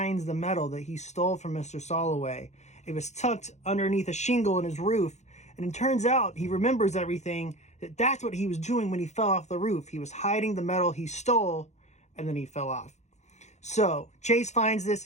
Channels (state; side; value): late; right; 0.33 ms